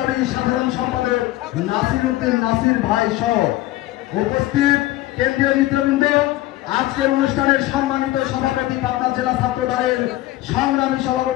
সাধারণ সম্পাদক নাসিরউদ্দিন নাসির ভাই সহ উপস্থিত কেন্দ্রীয় নেতৃবৃন্দ, আজকের অনুষ্ঠানের সম্মানিত সভাপতি পাবনা জেলা ছাত্র দলের সংগ্রামী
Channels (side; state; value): right; quieter; 16.5 dB